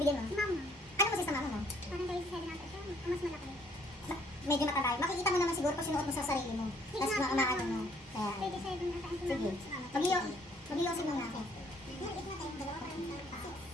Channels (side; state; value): both; normal; correlation 0.63